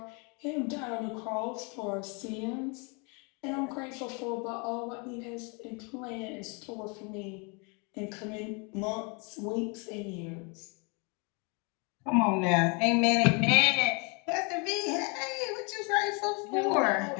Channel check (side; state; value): right; quieter; 32.8 dB